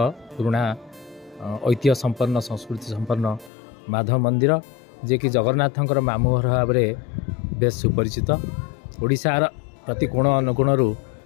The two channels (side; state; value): right; drops out; at 3.5 s